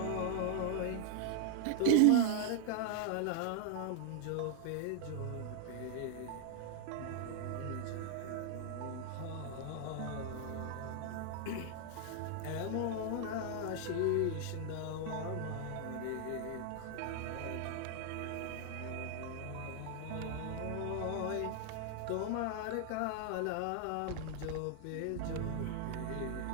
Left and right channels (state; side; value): different; both; correlation 0.00